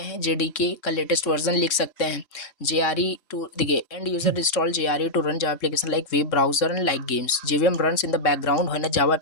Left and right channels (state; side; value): late; right; 3.6 ms